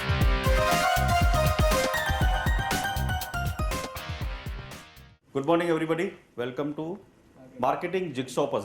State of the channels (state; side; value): identical; both; correlation 1.00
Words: morning everybody, welcome to marketing jigsaw